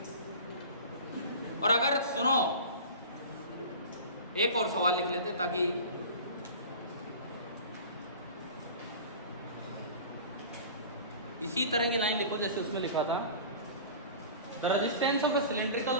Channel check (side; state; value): both; inverted; correlation -0.38